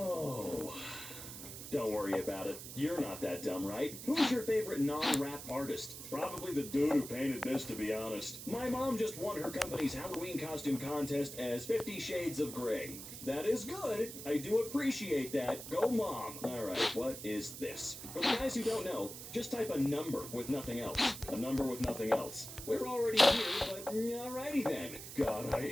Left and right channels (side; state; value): right; noise; hiss, 10 dB below the sound